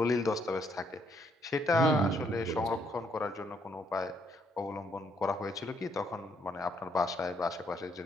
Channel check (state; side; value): normal; both; correlation 0.71